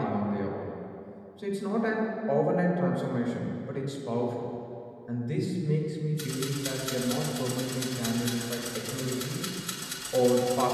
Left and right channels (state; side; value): identical; both; correlation 1.00